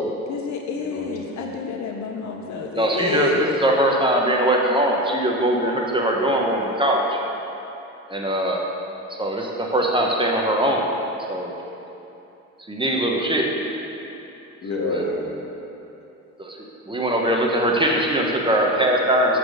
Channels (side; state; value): both; normal; correlation 0.21